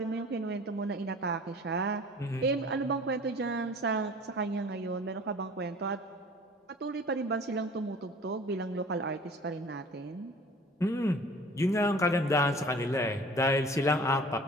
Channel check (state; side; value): normal; both; correlation 0.46